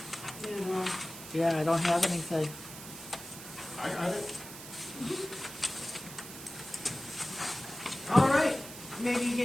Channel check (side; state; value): right; noise; hiss, 13 dB below the sound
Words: yeah, I don't have anything. I got it. All right, maybe you